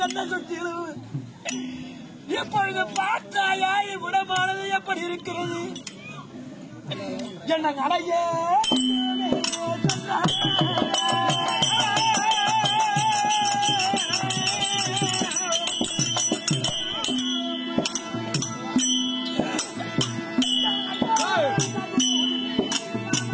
என்ன சுற்றிலும். இப்பொழுது பார்த்தாயா இவ்விடமானது எப்படி இருக்கிறது. என்ன நடையே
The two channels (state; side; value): identical; both; correlation 1.00